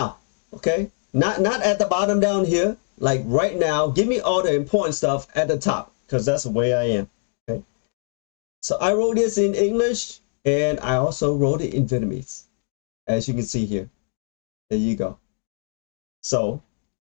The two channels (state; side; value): silent; right; 63 dB below the other